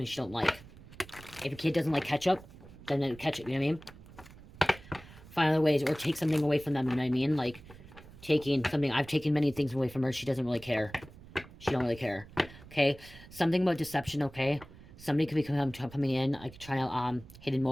she don't like. If a kid doesn't like ketchup, then ketchup, you know what I mean? Find other ways, or take something away from them, you know what I mean? Like, taking something, I've taken many things away from her, she doesn't really care. She don't really care. Okay? Something about deception, okay? Somebody could be coming in, like, trying to, hidden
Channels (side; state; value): right; noise; rumble, 19 dB below the sound